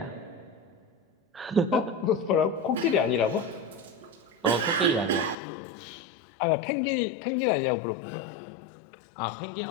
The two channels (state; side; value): drops out; right; at 5.4 s